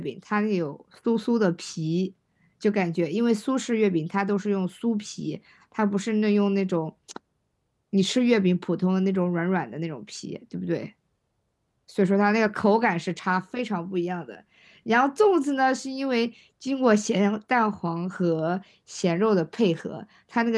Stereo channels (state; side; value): identical; both; correlation 1.00